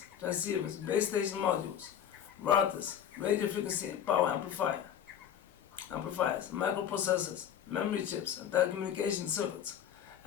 transceivers, base station modules, routers, radio frequency and power amplifiers, microprocessors, memory chips, and telecommunication circuits.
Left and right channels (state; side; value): quieter; right; 9.4 dB